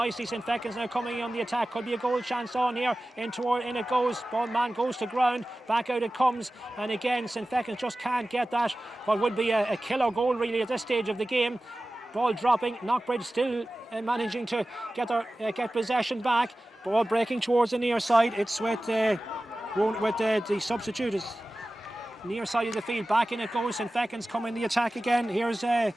St. Fechins now coming on the attack. Could be a goal chance on here. In it goes. Ball man goes to ground. Back out it comes. And again, St. Fechins just can't get that. What would be a killer goal really at this stage of the game. Ball dropping. Knockbridge still managing to get possession back. Ball breaking towards the near side. It's with the substitute. Near side of the field, back in it goes. St. Fechins coming the attack again. Here's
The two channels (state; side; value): normal; both; correlation 0.96